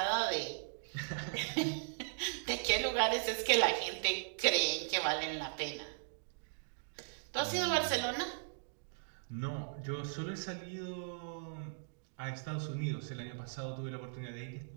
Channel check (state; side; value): silent; left; digital silence